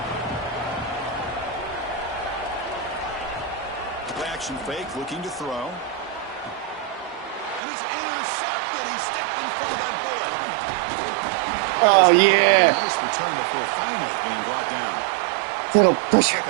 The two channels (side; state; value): left; drops out; at 7.6 s